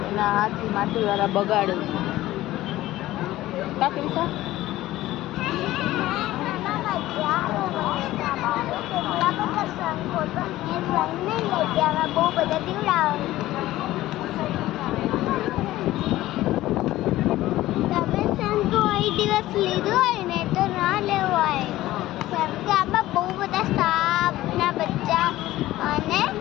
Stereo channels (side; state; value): right; quieter; 15.9 dB